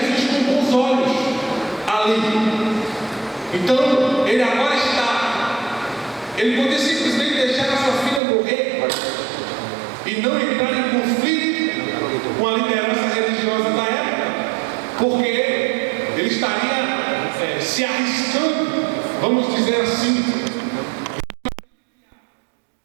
com bons olhos ali. Então, ele agora ele podia simplesmente deixar a sua filha morrer e não entrar em conflito com a liderança religiosa da época, porque ele estaria se arriscando, vamos dizer assim,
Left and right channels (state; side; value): drops out; left; at 8.2 s